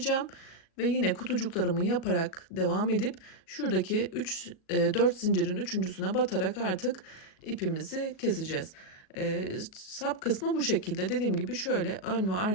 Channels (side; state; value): right; late; 37 ms